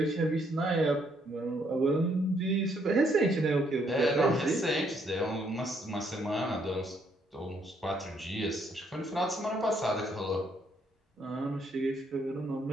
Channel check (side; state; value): both; normal; correlation 0.70